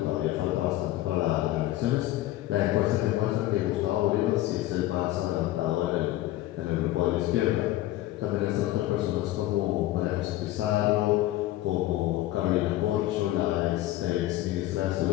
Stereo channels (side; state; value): right; quieter; 15.5 dB